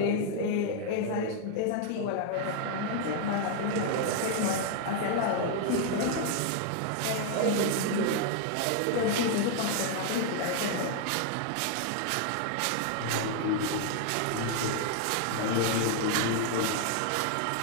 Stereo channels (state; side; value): different; both; correlation 0.00